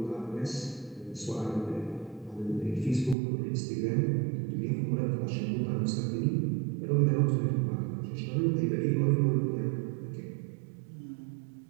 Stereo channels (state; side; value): drops out; left; at 3.2 s